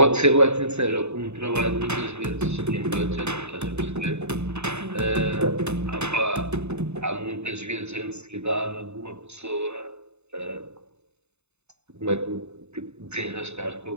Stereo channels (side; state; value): left; late; 0.81 ms